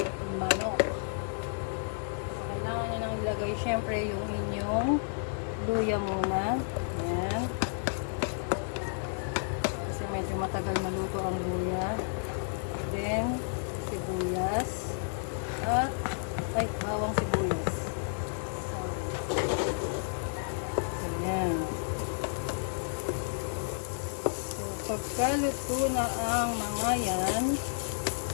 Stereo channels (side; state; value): right; silent; 57 dB below the other